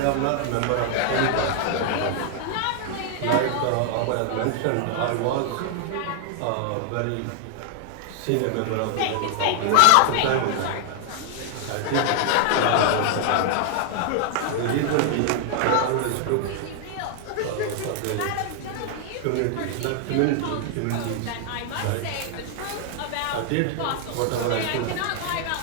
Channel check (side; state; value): both; different; correlation 0.00